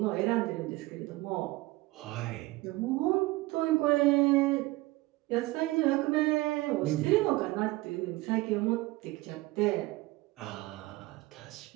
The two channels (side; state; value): left; quieter; 20.6 dB